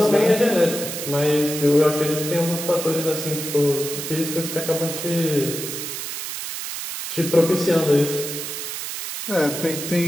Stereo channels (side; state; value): right; noise; hiss, 6 dB below the sound